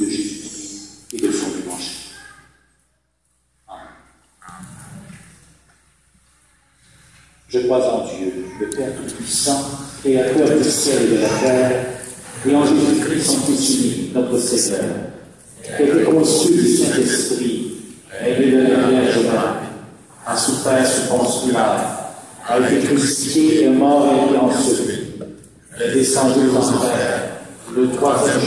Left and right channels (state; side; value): identical; both; correlation 1.00